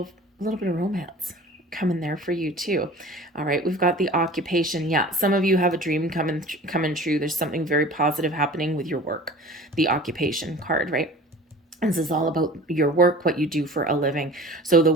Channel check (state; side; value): normal; both; correlation 0.42